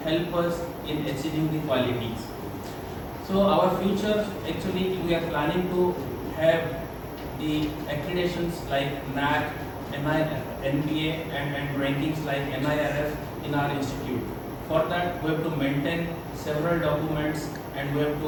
help us in achieving the qualities. So our future, actually, we are planning to have the accreditations like NAC, NBA, and rankings like NIRF in our institute. For that, we have to maintain several documents and we have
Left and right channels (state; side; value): identical; both; correlation 1.00